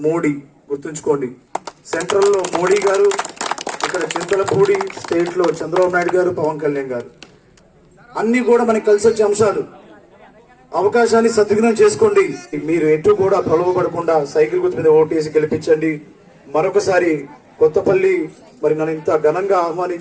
మోడీ, గుర్తుంచుకోండి, సెంట్రల్లో మోడీ గారు, ఇక్కడ చింతలపూడి స్టేట్ లో చంద్రబాబు నాయుడు గారు, పవన్ కళ్యాణ్ గారు. అన్ని కూడా మనకి కలిసి వచ్చే అంశాలు. అవకాశాన్ని సద్వినియోగం చేసుకోండి. మీరు ఎటు కూడా ప్రలోభపడకుండా సైకిల్ గుర్తు మీద ఓటేసి గెలిపించండి. మరొకసారి కొత్తపల్లి మరి నన్ను ఇంత ఘనంగా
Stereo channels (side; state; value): both; identical; correlation 1.00